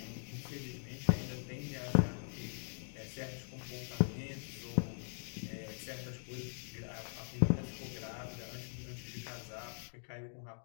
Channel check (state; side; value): silent; right; digital silence